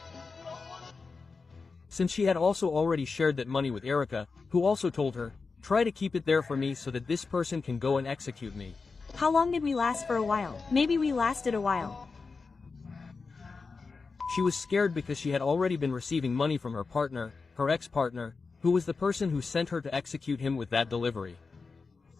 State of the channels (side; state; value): right; quieter; 4.5 dB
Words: Since she had also already shared that money with Erika, who also told her, try to keep it there for me so that this person can go and execute me. How long did we last for a while? Maybe we lasted a while. She was scared because she had already been receiving money from her partner, her ex-partner, who was the person who sent her to execute him with that delivery.